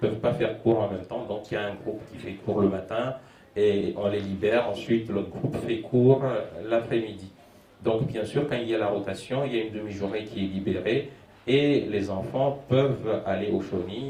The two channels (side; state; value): both; identical; correlation 1.00